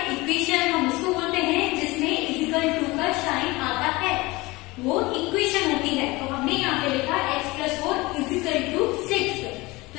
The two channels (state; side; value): quieter; right; 22.2 dB